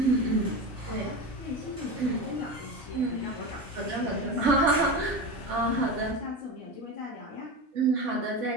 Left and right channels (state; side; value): normal; both; correlation 0.23